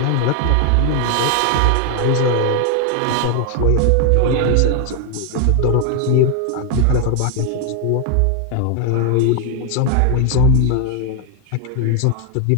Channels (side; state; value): both; different; correlation 0.01